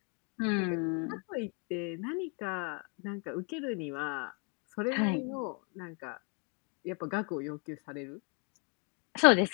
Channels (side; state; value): right; quieter; 35.2 dB